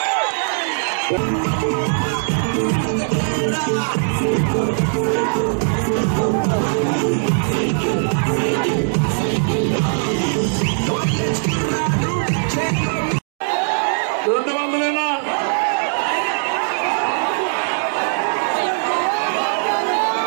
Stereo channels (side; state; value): left; silent; digital silence